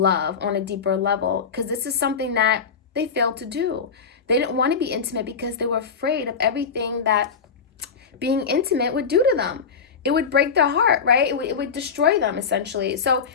on a deeper level, because this is something that they failed to do. They didn't want to be intimate because they were afraid of everything that being intimate would do to them. It would break their heart, right? It would destroy them, essentially. So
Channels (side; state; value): right; quieter; 5.9 dB